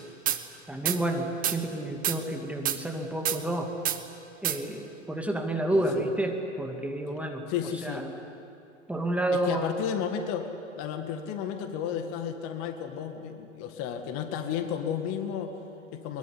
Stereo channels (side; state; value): both; normal; correlation 0.41